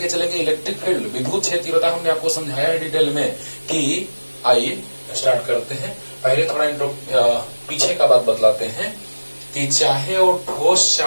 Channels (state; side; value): inverted; both; correlation -1.00